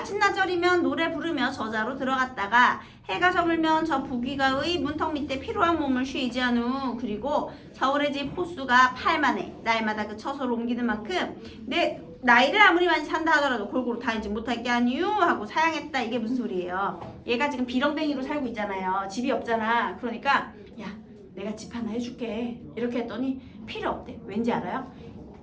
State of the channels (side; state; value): both; identical; correlation 1.00